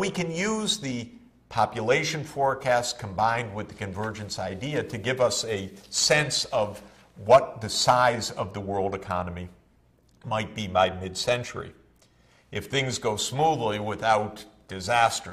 can use the population forecast combined with the convergence idea to give us a sense of what the size of the world economy might be by mid-century. If things go smoothly without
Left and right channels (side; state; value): both; identical; correlation 1.00